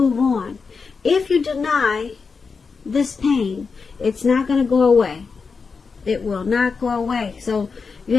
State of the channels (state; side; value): quieter; right; 5.0 dB